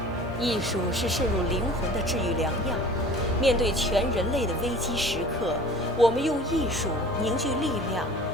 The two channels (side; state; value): both; normal; correlation 0.44